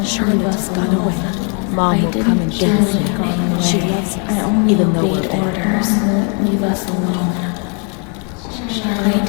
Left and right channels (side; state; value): right; quieter; 38.3 dB